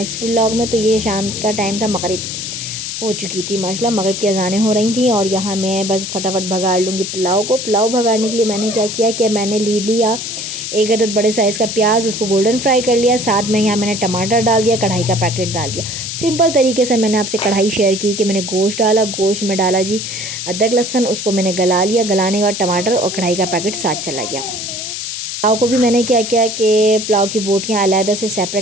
व्लॉग में। तो ये शाम का टाइम था, मगरिब हो चुकी थी माशाल्लाह, मगरिब की अज़ानें हो रही थी, और यहाँ मैं बस फटाफट भगाड़ लूँगी पुलाव को। पुलाव भगाड़ने के लिए मैंने क्या किया कि मैंने लिया एक अदद बड़े साइज़ का प्याज, उसको गोल्डन फ्राई कर लिया। साथ में यहाँ मैंने टमाटर डाल दिया, कढ़ाई का पैकेट डाल दिया। सिंपल तरीके से मैंने आपसे कढ़ाई शेयर की कि मैंने गोश्त डाला, गोश्त में डाला जी अदरक लहसुन, उसको मैंने गला लिया, गलाने के बाद टमाटर और कढ़ाई का पैकेट साथ चला गया। पुलाव को भी मैंने क्या किया कि पुलाव की बोटियाँ अलहदा से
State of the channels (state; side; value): noise; left; hiss, 5 dB below the sound